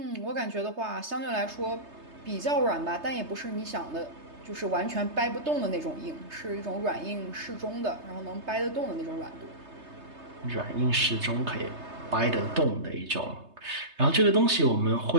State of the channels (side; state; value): left; late; 3.3 ms